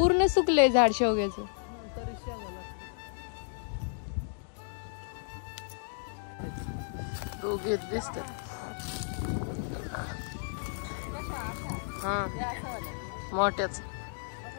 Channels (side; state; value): right; silent; digital silence